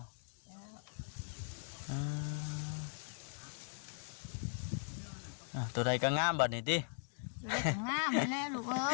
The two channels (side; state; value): right; silent; digital silence